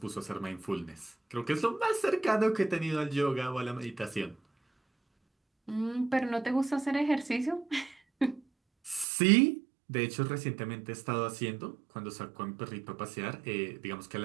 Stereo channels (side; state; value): left; drops out; at 9.1 s